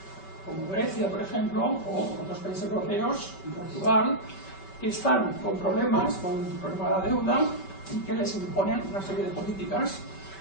como Grecia, por ejemplo, o otros países europeos, Portugal, que están con problemas, con el problema de la deuda, y que les imponen una serie de políticas.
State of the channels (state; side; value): late; right; 5.2 ms